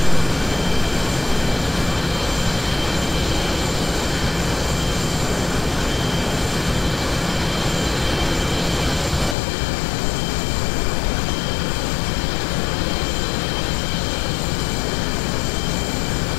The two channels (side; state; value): right; drops out; at 9.3 s